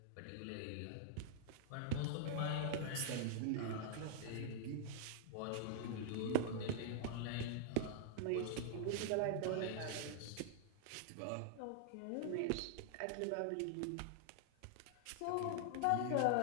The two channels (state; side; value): different; both; correlation 0.00